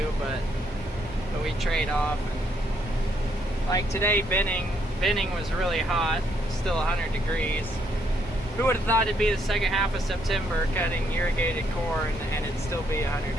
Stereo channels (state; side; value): normal; both; correlation 0.73